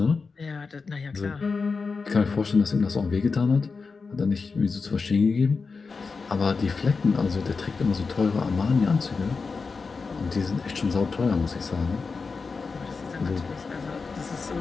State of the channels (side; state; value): right; quieter; 4.6 dB